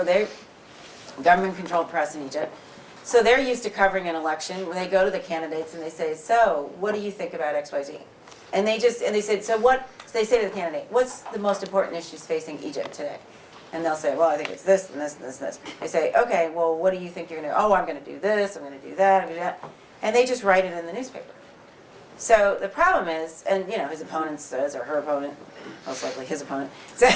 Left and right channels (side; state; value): both; identical; correlation 1.00